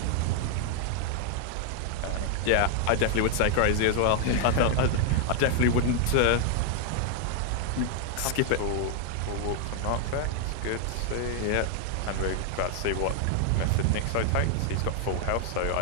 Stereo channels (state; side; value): different; both; correlation 0.00